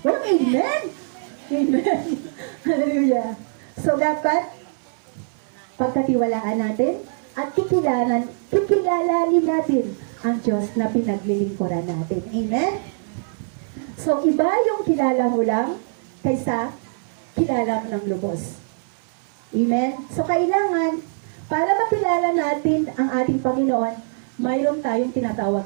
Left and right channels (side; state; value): left; silent; 64 dB below the other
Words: Walang amen! Amen! Hallelujah! So, dapat, pagkatiwalaan natin, at kikilalanin natin ang Diyos na pinaglilingkuran natin. Amen? So, iba yung kilala mo lang kaysa kilala mo ng lubos. Amen? So, kailangan, para makilala natin ang ating Panginoon, mayroon tayong